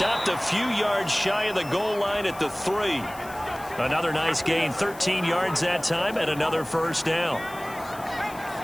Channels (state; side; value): noise; left; hiss, 19 dB below the sound